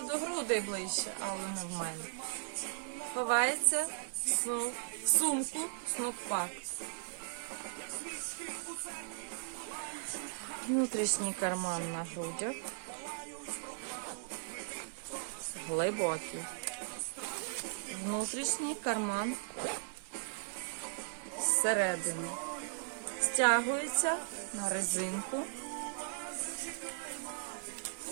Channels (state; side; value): silent; left; digital silence